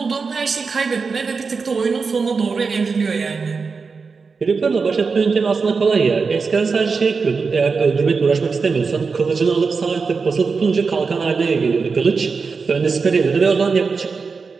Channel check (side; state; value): left; quieter; 4.9 dB